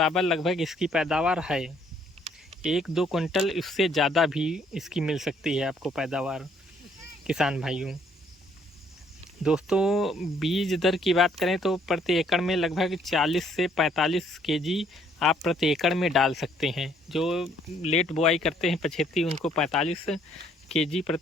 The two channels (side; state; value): both; normal; correlation 0.65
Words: लगभग इसकी पैदावार है। 1-2 कुंटल इससे ज़्यादा भी इसकी मिल सकती है आपको पैदावार किसान भाइयों। दोस्तों बीज दर की बात करें तो प्रति एकड़ में लगभग 40 से 45 केजी आप प्रति एकड़ में डाल सकते हैं। जो लेट बुआई करते हैं पछेती, उनको 45 केजी